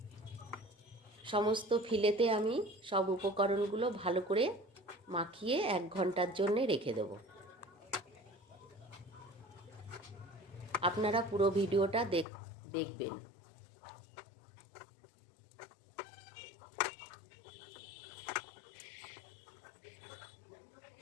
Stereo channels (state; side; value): drops out; right; at 12.2 s